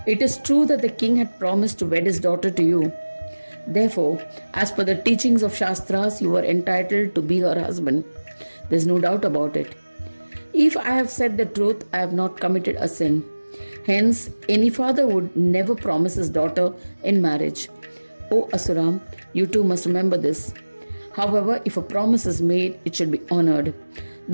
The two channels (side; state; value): both; inverted; correlation -1.00